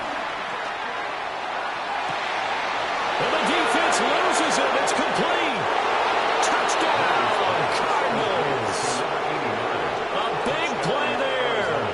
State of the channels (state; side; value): identical; both; correlation 1.00